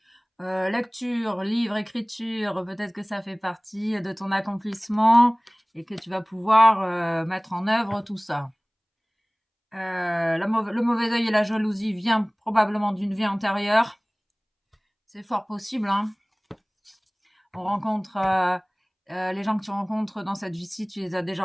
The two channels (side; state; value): both; identical; correlation 1.00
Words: Lecture, livre, écriture, peut-être que ça fait partie de ton accomplissement et que tu vas pouvoir mettre en œuvre tout ça. Le mauvais œil et la jalousie vient probablement d'une vie antérieure. C'est fort possible, hein. On rencontre les gens que tu rencontres dans cette vie-ci, tu les as